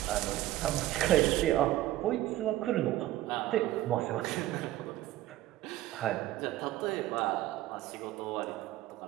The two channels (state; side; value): quieter; left; 15.0 dB